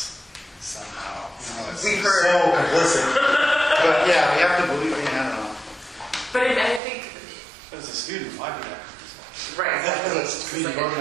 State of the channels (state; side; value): drops out; left; at 6.8 s